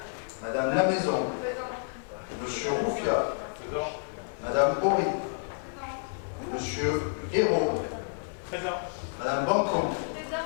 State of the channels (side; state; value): right; silent; digital silence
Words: Madame Lamaison. Présent. Monsieur Roufia. Présent. Madame Bory. Présent. Monsieur Hérault. Présent. Madame Bancon.